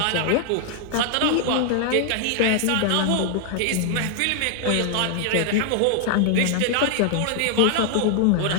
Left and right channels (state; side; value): different; both; correlation 0.00